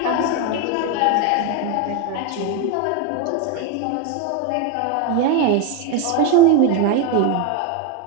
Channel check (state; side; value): different; both; correlation 0.02